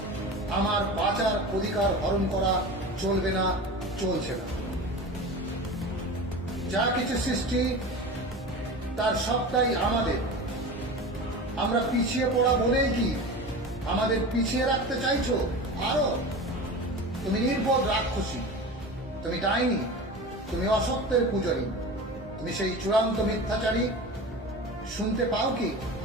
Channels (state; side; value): normal; both; correlation 0.31